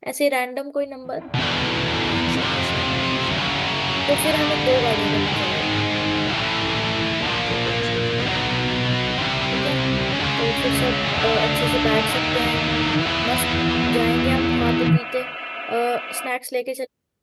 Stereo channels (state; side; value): identical; both; correlation 1.00